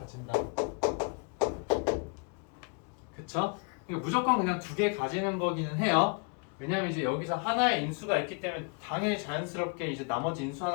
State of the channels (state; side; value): quieter; right; 34.9 dB